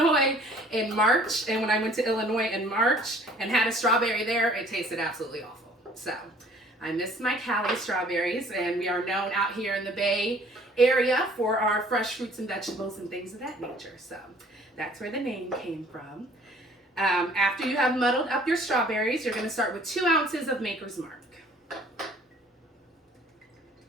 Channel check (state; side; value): normal; both; correlation 0.54